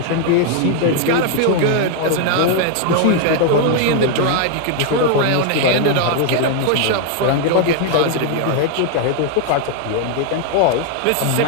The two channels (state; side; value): different; both; correlation 0.00